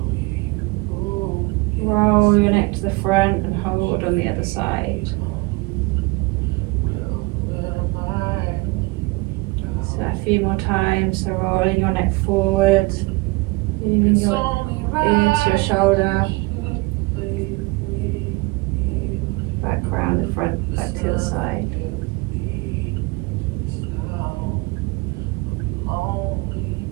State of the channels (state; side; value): quieter; left; 24.9 dB